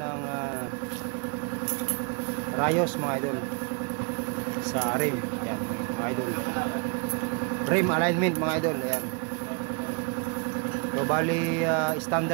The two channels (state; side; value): quieter; left; 36.1 dB